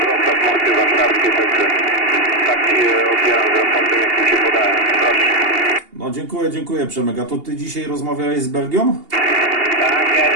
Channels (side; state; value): left; late; 2.8 ms